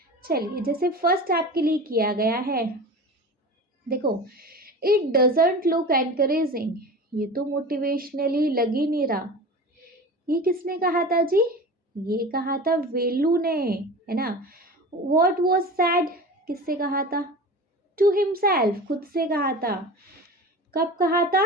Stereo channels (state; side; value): normal; both; correlation 0.33